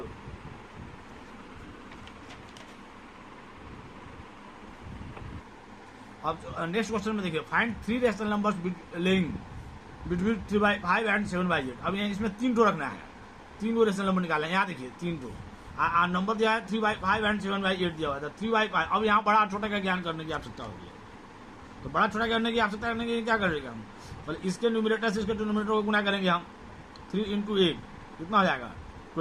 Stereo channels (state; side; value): identical; both; correlation 1.00